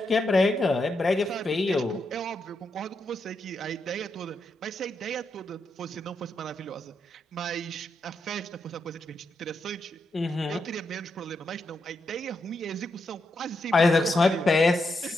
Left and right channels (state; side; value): normal; both; correlation 0.83